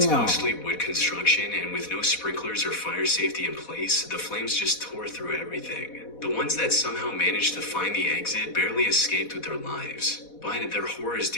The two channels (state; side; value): late; right; 4.1 ms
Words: mostly wood construction, and with no sprinklers or fire safety in place, the flames just tore through everything. The ones that somehow managed to find the exit barely escaped with their lives. But their horrors